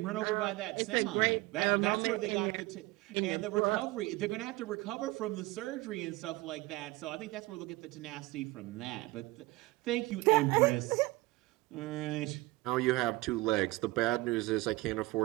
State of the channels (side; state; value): left; quieter; 20.9 dB